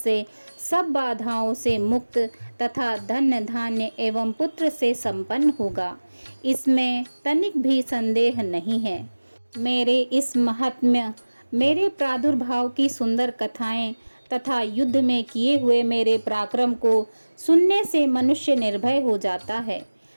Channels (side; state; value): both; inverted; correlation -1.00